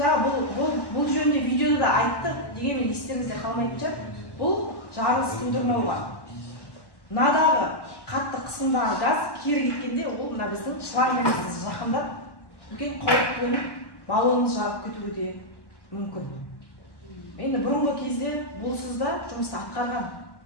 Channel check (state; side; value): late; right; 1.1 ms